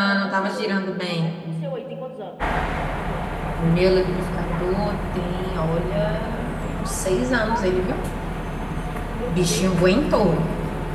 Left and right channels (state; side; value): identical; both; correlation 1.00